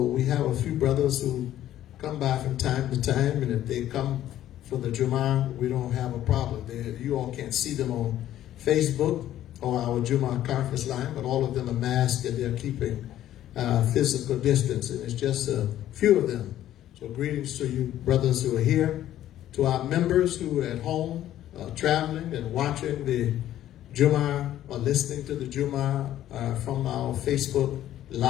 we have a few brothers who come by from time to time, and if they come for the Jummah, we don't have a problem. You all can't see them on Facebook or our Jummah conference line, but all of them are masked and they're keeping physical distance, and it's just a few of them. So greetings to you brothers who are here, to our members who are at home traveling and watching the Jummah or listening to the Jummah from our Facebook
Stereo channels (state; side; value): quieter; right; 12.5 dB